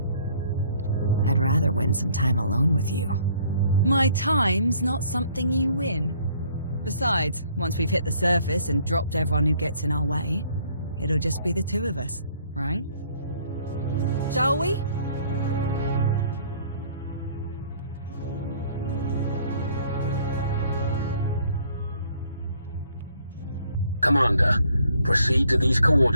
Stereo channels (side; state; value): both; inverted; correlation -0.61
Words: I'd rather win some time alone with you. My time's not something you win. Besides, once we've hit the surface and dropped everyone who gets in our way, it'll just be the two of us, right? Shall we? Commander, proceed to these